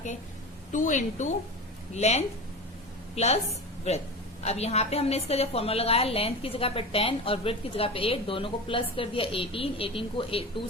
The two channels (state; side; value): normal; both; correlation 0.28